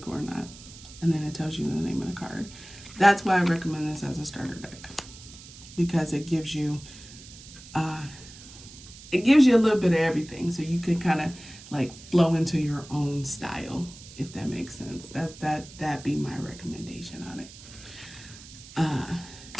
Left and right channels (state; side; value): noise; right; hiss, 18 dB below the sound